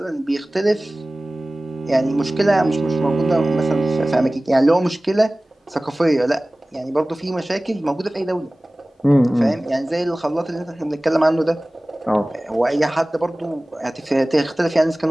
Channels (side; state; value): both; normal; correlation 0.98